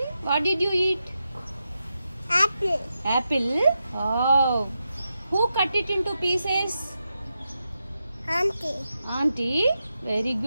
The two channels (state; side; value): inverted; both; correlation -0.88